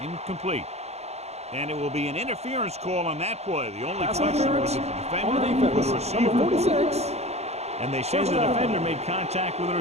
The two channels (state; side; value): late; left; 0.31 ms